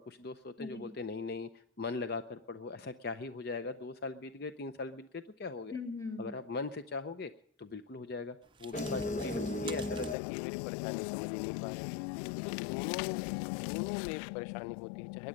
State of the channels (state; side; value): drops out; right; at 10.2 s